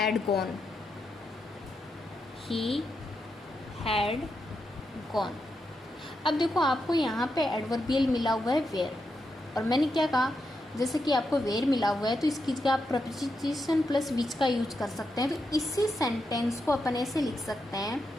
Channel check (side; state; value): both; normal; correlation 0.85